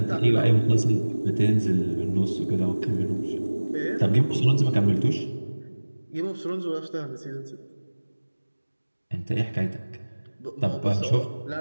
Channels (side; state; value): both; inverted; correlation -1.00